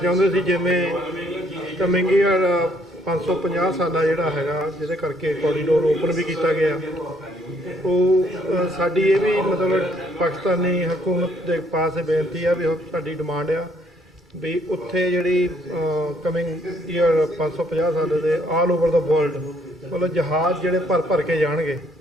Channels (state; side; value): normal; both; correlation 0.67